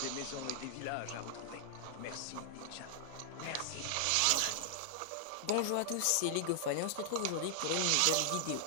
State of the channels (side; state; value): both; different; correlation 0.00